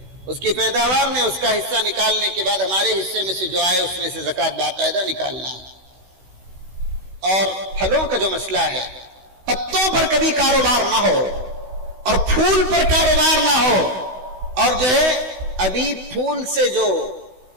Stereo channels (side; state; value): left; late; 16 ms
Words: اس کی پیداوار میں اس کا حصہ نکالنے کے بعد ہمارے حصے میں سے جو آئے اس میں سے زکوٰۃ باقاعدہ نکالنا ہے۔ اور پھلوں کا جو مسئلہ ہے، پتوں پر کبھی کاروبار نہ ہو اور پھول پر کاروبار نہ ہو، اور جو ہے ابھی پھول سے جو